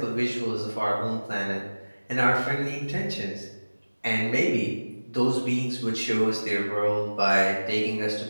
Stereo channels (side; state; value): both; inverted; correlation -1.00